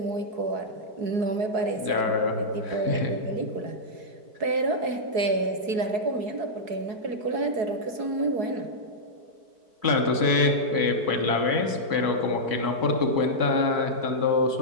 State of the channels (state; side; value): late; left; 4.7 ms